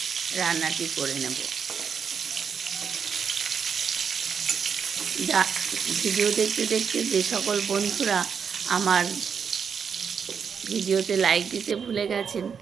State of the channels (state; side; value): quieter; left; 6.7 dB